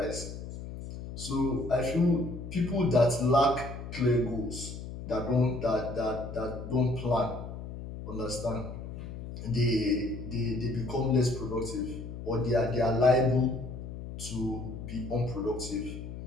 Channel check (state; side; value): noise; left; hum, 9 dB below the sound